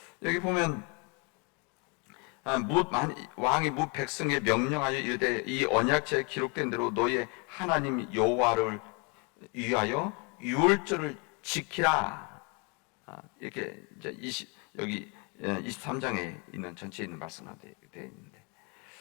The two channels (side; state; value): right; quieter; 32.5 dB